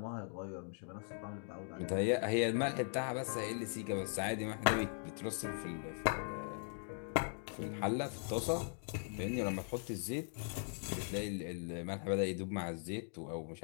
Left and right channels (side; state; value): right; silent; 51 dB below the other